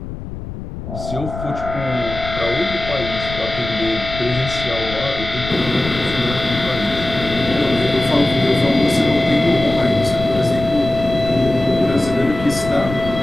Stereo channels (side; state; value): left; noise; rumble, 10 dB below the sound